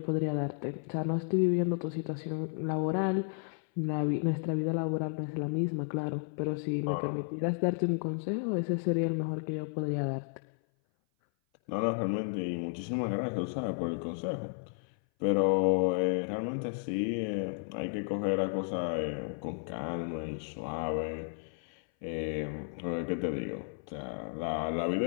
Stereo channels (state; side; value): silent; right; 56 dB below the other